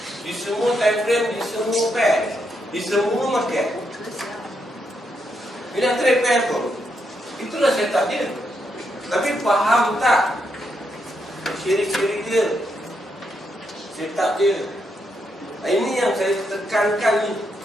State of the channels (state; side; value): normal; both; correlation 0.80